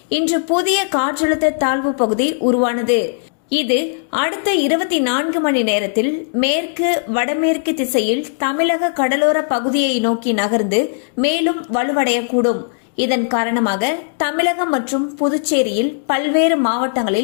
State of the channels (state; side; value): silent; right; digital silence